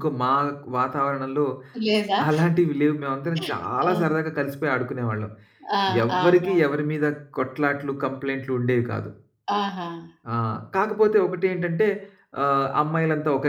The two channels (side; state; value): both; identical; correlation 1.00